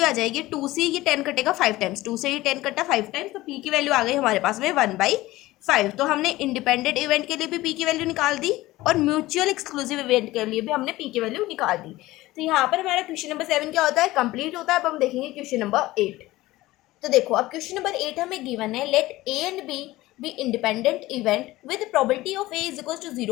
आ जाएगी 2 से ये 10 कटेगा 5 टाइम्स, 2 से ये 10 कटा 5 टाइम्स, तो p की वैल्यू आ गई हमारे पास में 1/5। तो हमने इंडिपेंडेंट इवेंट के लिए भी p की वैल्यू निकाल दी और म्यूचुअल एक्सक्लूसिव इवेंट के लिए भी हमने p की वैल्यू निकाल दी। तो यहाँ पर हमारा क्वेश्चन नंबर 7 क्या होता है, कंप्लीट होता है। अब हम देखेंगे क्वेश्चन नंबर 8। तो देखो अब क्वेश्चन नंबर 8 हमें गिवन है, let a and b be independent event with probability of a is equals to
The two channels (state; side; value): quieter; right; 17.9 dB